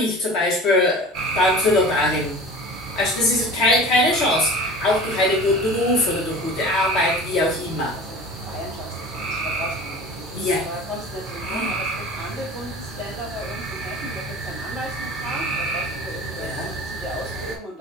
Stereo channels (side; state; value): both; normal; correlation 0.39